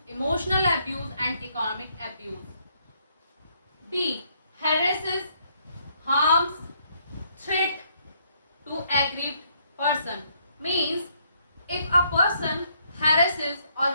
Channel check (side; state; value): both; inverted; correlation -0.71